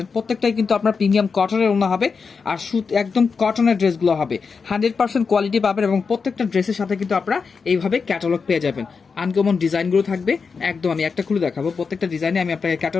প্রত্যেকটাই কিন্তু আপনার প্রিমিয়াম কটনের ওড়না হবে আর সুত একদম কটনের ড্রেসগুলো হবে। 100% কোয়ালিটি পাবেন এবং প্রত্যেকটা ড্রেসের সাথে কিন্তু আপনারা এইভাবে ক্যাটালগ পেয়ে যাবেন। আনকমন ডিজাইনগুলো থাকবে একদম। আমি একটা খুলে দেখাবো, প্রত্যেকটা ডিজাইনে আমি আপনাকে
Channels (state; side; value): quieter; right; 5.2 dB